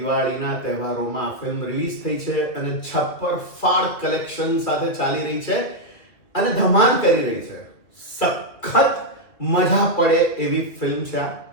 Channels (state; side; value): late; right; 2.4 ms